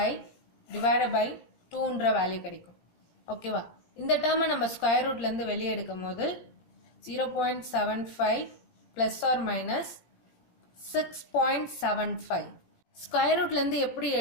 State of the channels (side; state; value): right; late; 17 ms